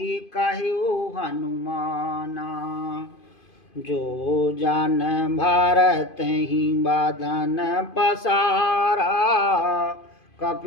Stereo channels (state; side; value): late; right; 2.5 ms